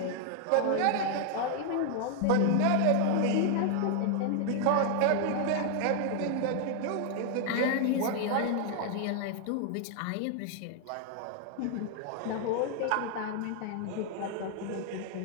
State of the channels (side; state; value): both; different; correlation 0.00